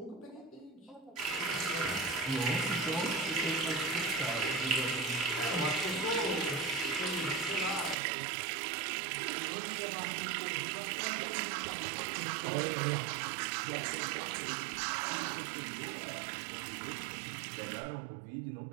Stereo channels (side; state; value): left; drops out; at 8.0 s